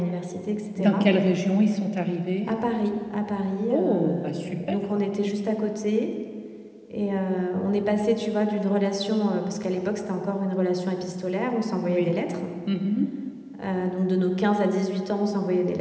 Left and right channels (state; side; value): identical; both; correlation 1.00